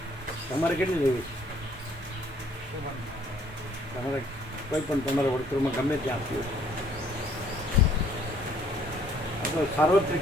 તમારે કેટલી લેવી છે તમારે કોઈ પણ તમારા વર્તુળમાં ગમે ત્યાં આપ્યું આ તો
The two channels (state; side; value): normal; both; correlation 0.62